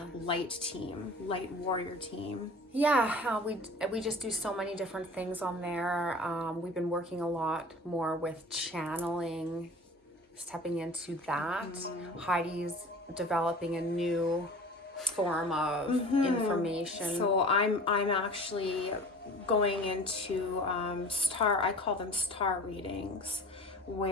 light team, light warrior team. Yeah, we just do so many different things on there. We've been working a lot more with channeling, stepping into that. Heidi's developing a new form of information. So I'm actually going into I call them star readings,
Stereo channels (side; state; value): both; normal; correlation 0.41